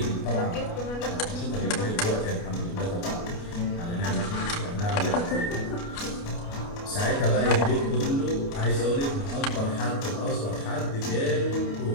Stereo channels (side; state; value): right; late; 29 ms